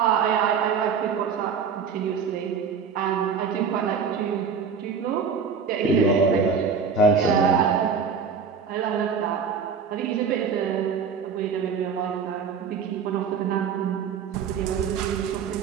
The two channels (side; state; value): left; quieter; 6.1 dB